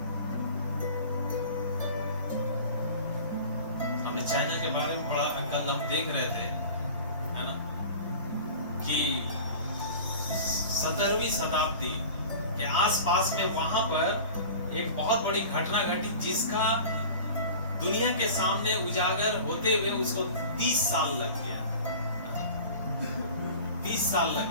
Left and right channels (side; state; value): both; inverted; correlation -0.39